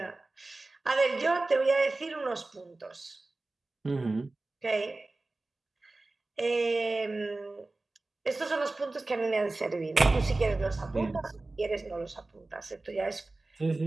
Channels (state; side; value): quieter; left; 3.1 dB